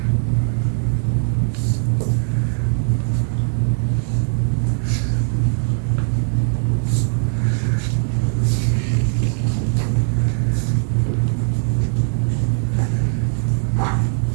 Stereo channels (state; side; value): silent; left; digital silence